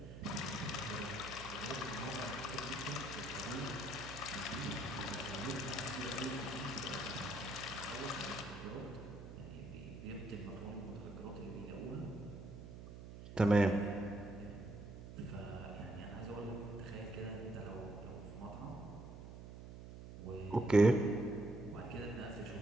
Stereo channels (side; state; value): right; noise; hum, 12 dB below the sound